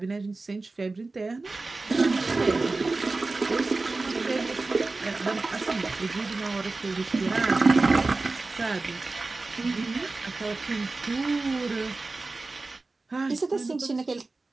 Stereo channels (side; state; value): left; quieter; 3.5 dB